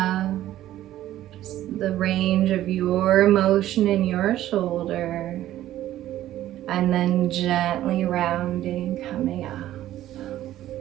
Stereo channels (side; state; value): left; quieter; 13.5 dB